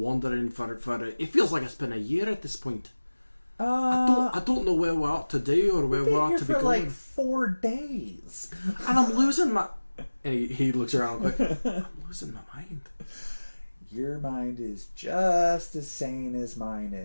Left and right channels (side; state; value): both; inverted; correlation -1.00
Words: for it feels like it's been a year at this point. I don't know where we ought to do or where we ought to be going. Like 4 days, and I'm losing my. And he looks around quick. I'm losing my mind. Your mind is just as sane as mine